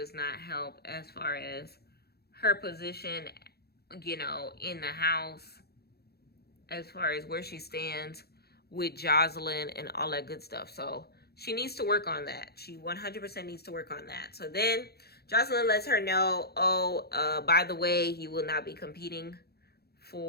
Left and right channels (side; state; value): right; late; 0.46 ms